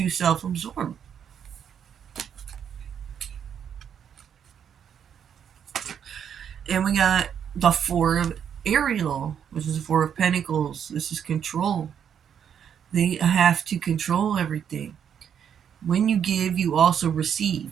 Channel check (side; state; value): left; quieter; 8.3 dB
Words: self absorbed. And we got the Four of Ariel, which is the Four of Pentacles. This is control. They have to control everything. When you give, you also receive.